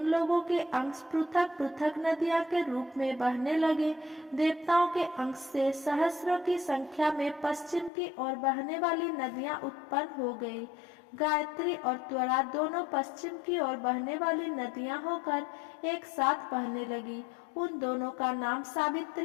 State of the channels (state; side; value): drops out; right; at 7.9 s